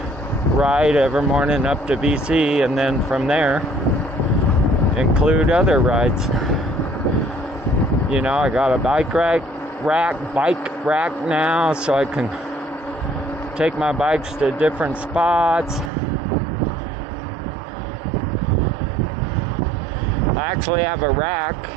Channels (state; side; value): drops out; left; at 15.9 s